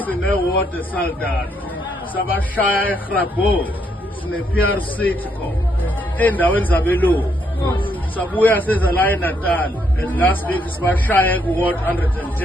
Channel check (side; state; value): both; normal; correlation 0.74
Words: Sine-ward eSaldanha. Sabashaya eGrabhow. Sine-PRC khona. Endaweni zabelungu. Sabuya seza la eNatal. And last week sibashaya ku-ward